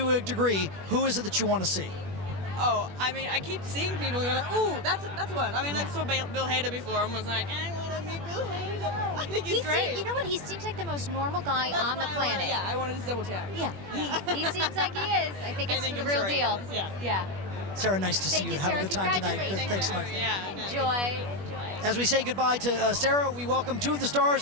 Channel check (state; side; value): late; left; 21 ms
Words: a degree. Who is it that you want to see? Oh, I mean, I keep seeing people going, ooh, that's one. I mean, I saw Bill Hader before and was like, I want to meet Bill Hader. I think he's great. You know what? He seems like the most normal guy on the planet. I wanted to double check. Yeah, he seems like he is. I think it's the real deal. Yeah. Sarah, nice to see you. Have a good time tonight. Thanks so much. Enjoy. As we say goodbye to Sarah, we welcome two of the